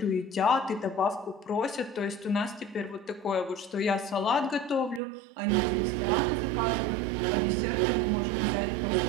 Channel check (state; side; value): drops out; left; at 5.0 s